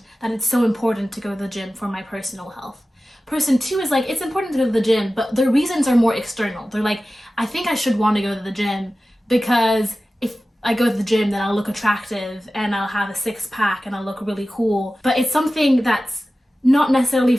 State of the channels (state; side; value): normal; both; correlation 0.95